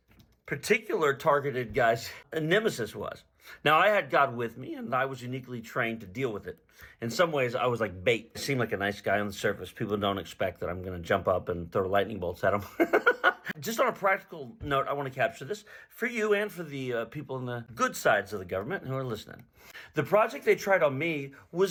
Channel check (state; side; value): identical; both; correlation 1.00